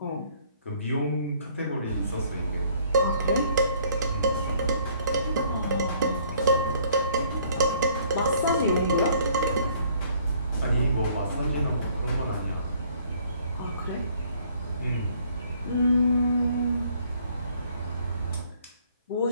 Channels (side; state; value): both; inverted; correlation -0.61